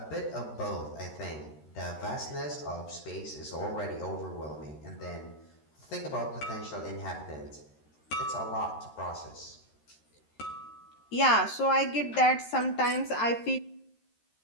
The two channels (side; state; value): right; late; 13 ms